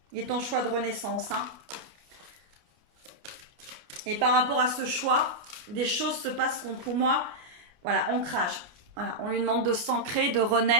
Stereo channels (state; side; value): late; left; 29 ms